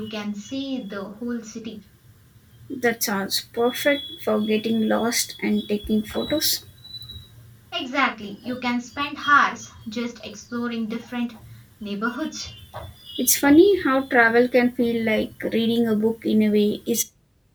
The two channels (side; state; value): both; identical; correlation 1.00